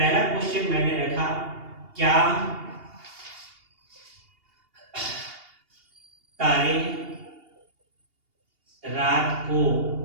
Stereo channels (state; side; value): late; left; 2.8 ms